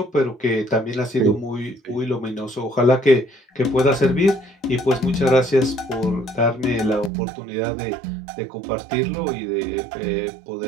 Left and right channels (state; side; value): drops out; left; at 7.1 s